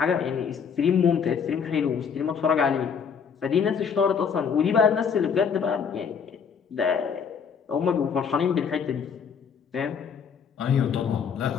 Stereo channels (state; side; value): quieter; right; 6.7 dB